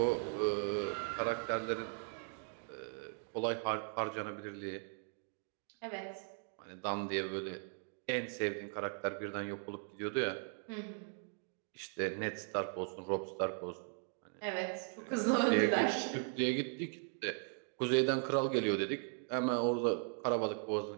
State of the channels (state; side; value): silent; left; 52 dB below the other